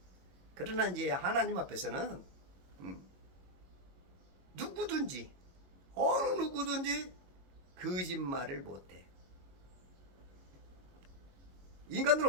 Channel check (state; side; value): late; left; 22 ms